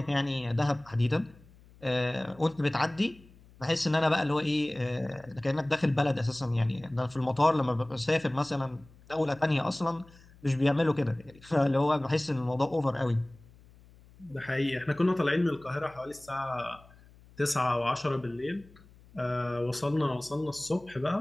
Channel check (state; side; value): noise; left; hum, 25 dB below the sound